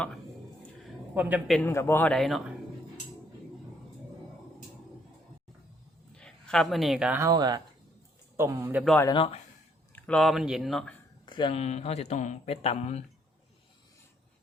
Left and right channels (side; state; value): both; normal; correlation 0.68